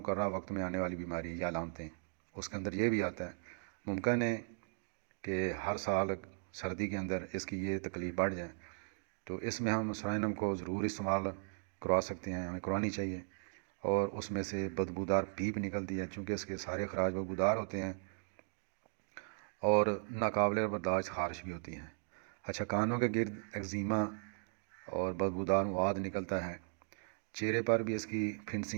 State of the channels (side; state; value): left; silent; 53 dB below the other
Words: وقت میں آنے والی بیماری یا علامتیں، اس کے اندر یہ بھی آتا ہے. ممکن ہے کہ ہر سال سردی کے اندر اس کی یہ تکلیف بڑھ جائے، تو اس میں ہم سوائنم کو ضرور استعمال کروا سکتے ہیں، ہمیں کروانی چاہیے. اور اس میں سے بدبودار پیپ نکلتی ہے چونکہ اس کے سارے اخراج بدبودار ہوتے ہیں اور ناقابل برداشت خارش بھی ہوتی ہیں. اچھا، کانوں کے گرد ایگزیما اور بدبودار مواد نکلتا ہے. چہرے پر بھی اس کی